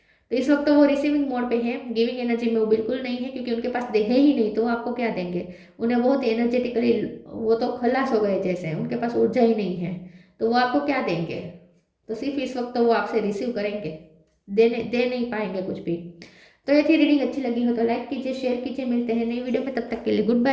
तो इस वक्त तो वो रिसीविंग मोड पे है, गिविंग एनर्जी में वो बिल्कुल नहीं है, क्योंकि उनके पास दे है ही नहीं तो वो आपको क्या देंगे। उन्हें बहुत एनर्जेटिकली वो तो खलास हो गए जैसे, उनके पास ऊर्जा ही नहीं है, तो वो आपको क्या देंगे। तो सिर्फ इस वक्त तो वो आपसे रिसीव करेंगे, दे नहीं पाएंगे कुछ भी। तो ये थी रीडिंग, अच्छी लगी हो तो लाइक कीजिए, शेयर कीजिए, मिलते हैं नई वीडियो में, तब तक के लिए गुड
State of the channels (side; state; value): both; identical; correlation 1.00